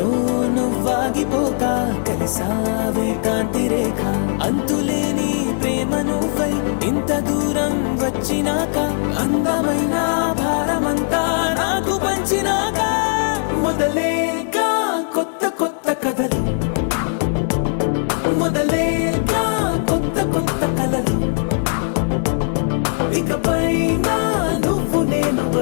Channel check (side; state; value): right; silent; digital silence